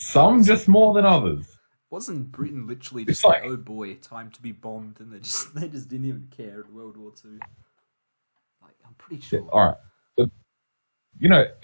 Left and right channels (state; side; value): inverted; both; correlation -1.00